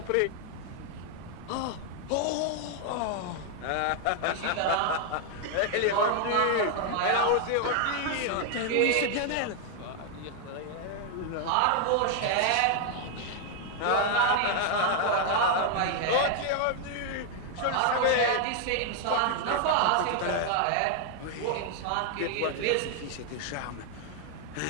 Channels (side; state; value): both; different; correlation 0.00